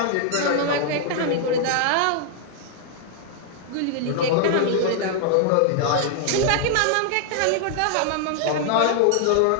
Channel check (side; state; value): both; different; correlation 0.00